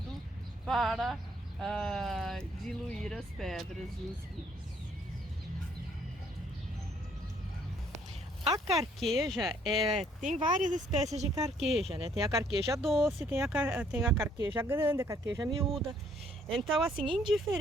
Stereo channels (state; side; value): normal; both; correlation 0.65